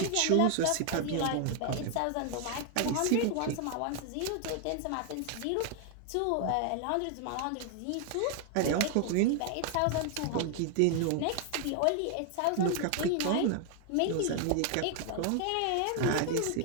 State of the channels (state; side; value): different; both; correlation 0.00